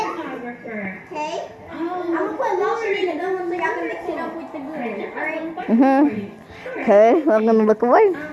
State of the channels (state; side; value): identical; both; correlation 1.00